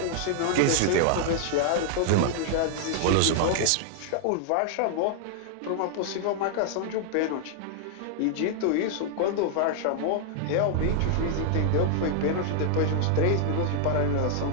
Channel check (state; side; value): different; both; correlation 0.00